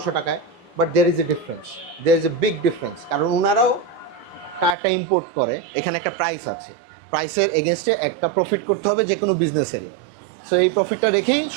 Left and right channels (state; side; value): drops out; left; at 4.8 s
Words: টাকায়। But there is a difference, there is a big difference. কারণ ওনারাও টায়ারটা ইম্পোর্ট করে, এখানে একটা প্রাইস আছে, প্রাইসের এগেনস্টে একটা প্রফিট করতে হবে যে কোনো বিজনেসেরই। সো এই প্রফিটটা রেখেই